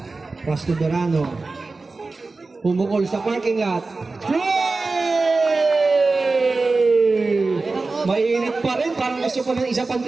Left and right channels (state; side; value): quieter; left; 3.7 dB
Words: Pass to Dorano. Pumukol sa parking lot. Mainit pa rin, parang gusto ko ng isa pang